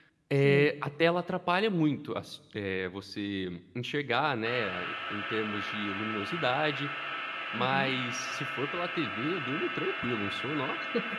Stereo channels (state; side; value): identical; both; correlation 1.00